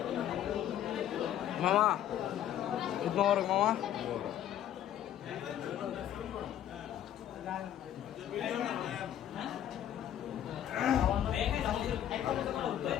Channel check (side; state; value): right; quieter; 11.0 dB